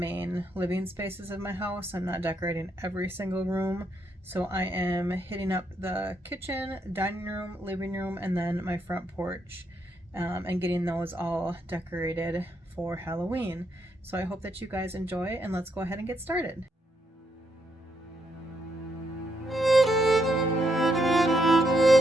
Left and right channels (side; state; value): both; normal; correlation 0.77